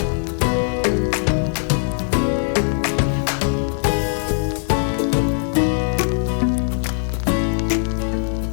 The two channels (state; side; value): silent; right; digital silence